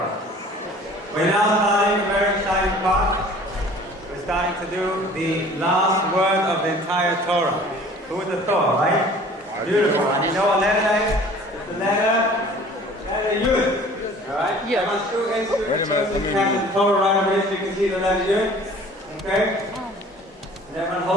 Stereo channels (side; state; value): both; normal; correlation 0.48